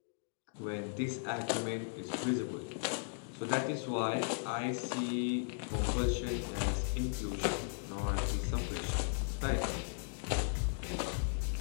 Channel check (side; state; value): right; silent; digital silence